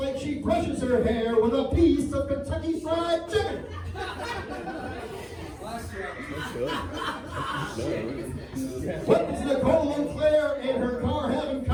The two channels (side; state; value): both; identical; correlation 1.00